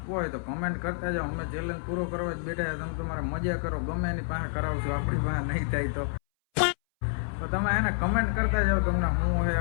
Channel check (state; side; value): silent; right; 59 dB below the other